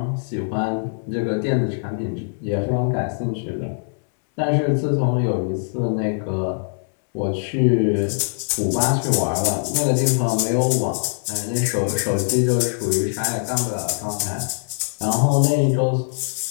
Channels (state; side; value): silent; right; 64 dB below the other